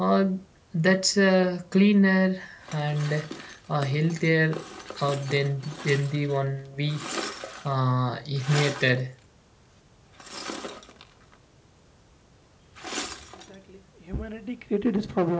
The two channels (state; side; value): identical; both; correlation 1.00